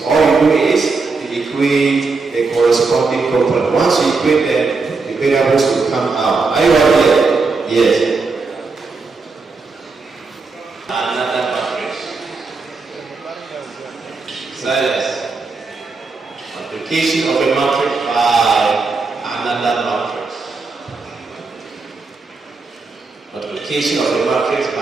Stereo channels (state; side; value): quieter; left; 4.2 dB